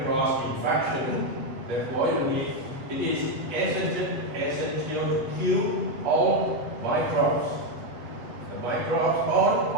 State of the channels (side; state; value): left; late; 7.8 ms